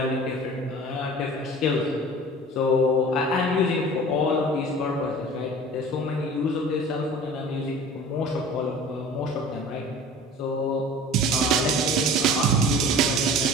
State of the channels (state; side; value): normal; both; correlation 0.41